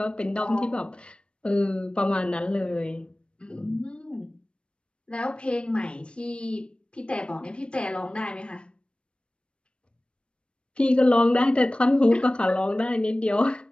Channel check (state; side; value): late; right; 0.057 ms